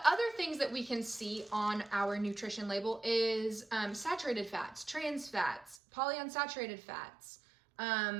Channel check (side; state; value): left; drops out; at 5.8 s